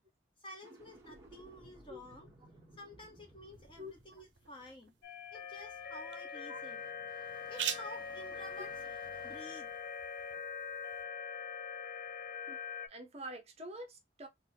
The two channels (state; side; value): normal; both; correlation -0.10